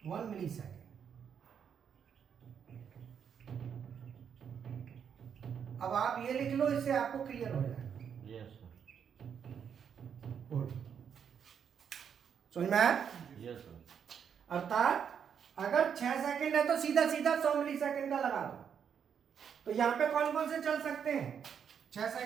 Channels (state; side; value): quieter; left; 7.7 dB